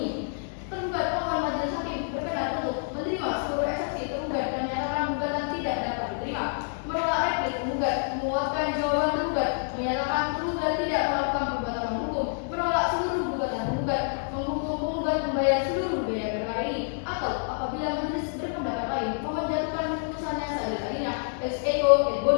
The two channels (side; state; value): right; silent; digital silence